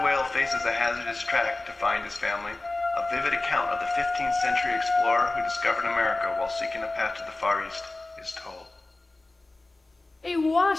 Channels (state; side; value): quieter; right; 3.0 dB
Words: whale faces a hazardous track to find his family. A vivid account of the 15th century explorer who discovered America while seeking a path to the Far East is told. A